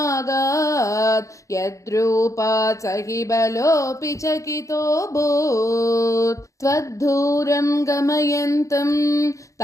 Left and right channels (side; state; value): right; late; 0.15 ms